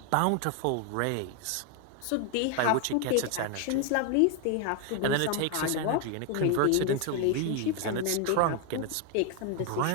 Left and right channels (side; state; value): both; different; correlation 0.01